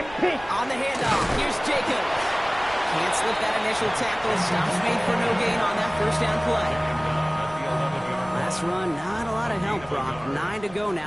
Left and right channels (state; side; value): noise; right; rumble, 20 dB below the sound